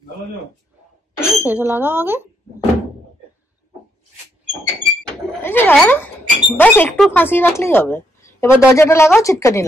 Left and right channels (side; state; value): both; normal; correlation 0.76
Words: সেটা লাগাও আগে। এই যে বাস একটু ফাঁসিয়ে রাখলেই হবে। এবার দরজাটা লাগাও, ছিটকানি